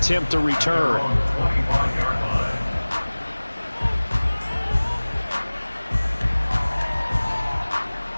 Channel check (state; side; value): inverted; both; correlation -1.00